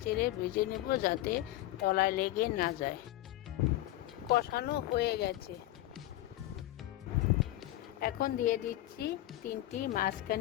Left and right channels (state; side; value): quieter; right; 15.7 dB